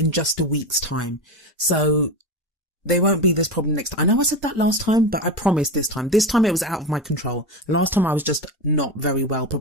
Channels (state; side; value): normal; both; correlation 0.20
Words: just a week's time. So there won't be this problem next time. I know I said that last time, but I promise this time. This time it was out of my control. Last time I was just not very well